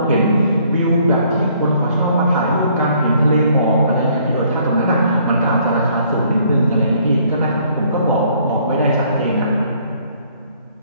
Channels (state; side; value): inverted; both; correlation -0.63